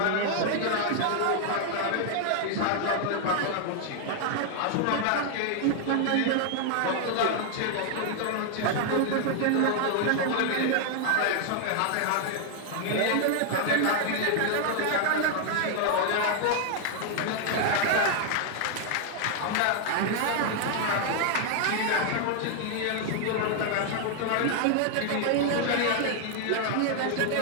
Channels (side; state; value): both; different; correlation 0.00